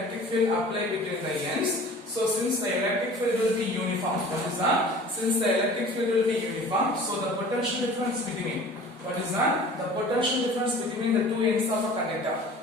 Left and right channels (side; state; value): both; normal; correlation 0.44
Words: field applied between the ends. So since the electric field will be uniform, what is that? Since the electric field will be uniform, so the potential difference between, what is that? The potential difference between the two ends of a conductor.